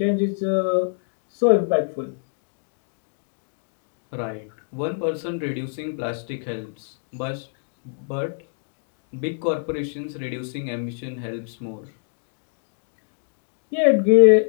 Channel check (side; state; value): right; silent; digital silence